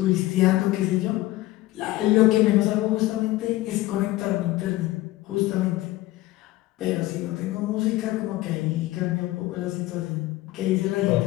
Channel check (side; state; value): right; quieter; 17.6 dB